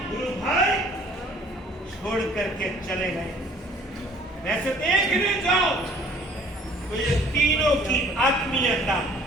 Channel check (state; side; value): normal; both; correlation 0.55